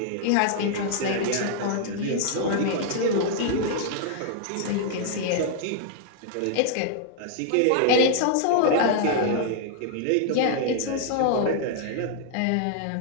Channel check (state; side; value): different; both; correlation -0.01